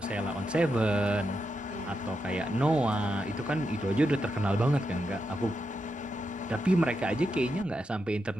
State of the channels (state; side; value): normal; both; correlation 0.85